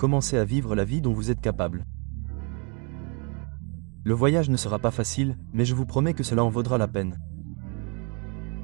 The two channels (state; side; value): quieter; left; 34.5 dB